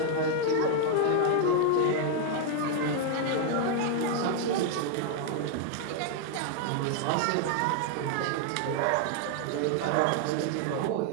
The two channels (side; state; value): both; different; correlation 0.00